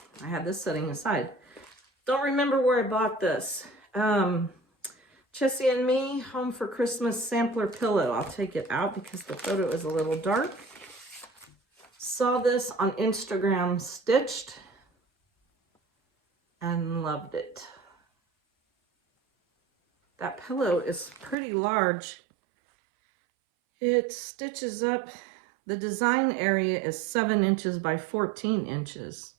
I had this sitting aside. Don't remember where I bought this. Chessie and Me Home for Christmas sampler pillow. I'll take it out because the photo is a little dark. Saw this on Instagram stitched and loved it. That pillow is pretty large. It stitches up. The design area is 7 inches by 14 inches.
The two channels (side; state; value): left; drops out; at 21.4 s